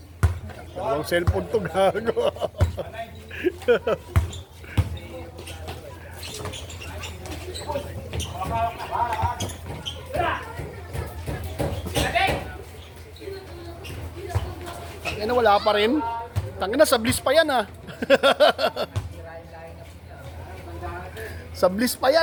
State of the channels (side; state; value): both; identical; correlation 1.00